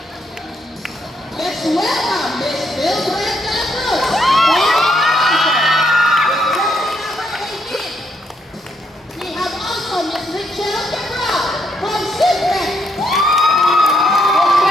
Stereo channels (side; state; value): both; normal; correlation 0.75